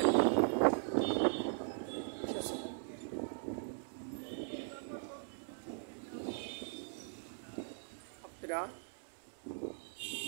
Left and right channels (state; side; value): silent; left; 51 dB below the other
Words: ঠিক আছে, আপনারা